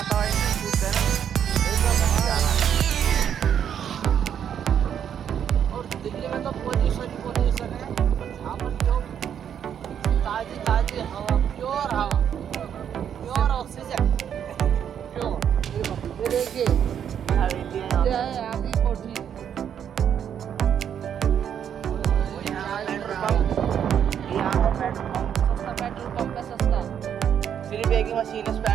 शुद्ध है ना, और दिल्ली में तो पोल्यूशन है। यहाँ पर जो ताजी ताजी हवा, प्योर हवा, प्योर ऑक्सीजन, प्योर। ये देखिए ये है आगे कोठी। यहाँ का पेट्रोल पंप सस्ता पेट्रोल पंप है, सस्ता। सिर्फ एक ही मशीन है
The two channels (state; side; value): quieter; left; 8.8 dB